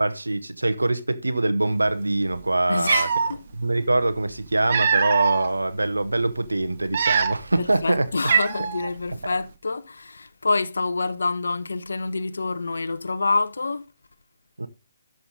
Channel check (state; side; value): inverted; both; correlation -0.91